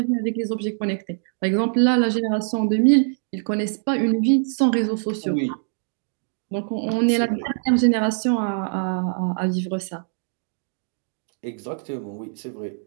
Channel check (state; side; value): silent; left; digital silence